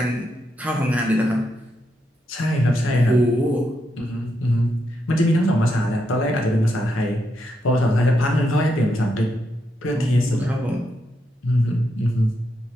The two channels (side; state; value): both; normal; correlation 0.82